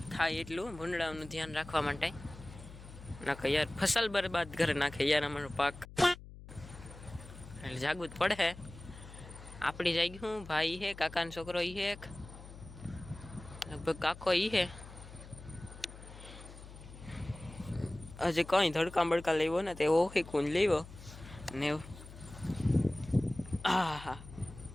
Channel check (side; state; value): left; noise; hum, 16 dB below the sound